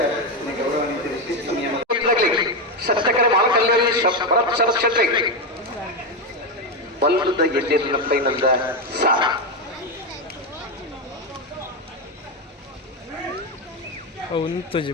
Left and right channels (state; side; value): normal; both; correlation 0.10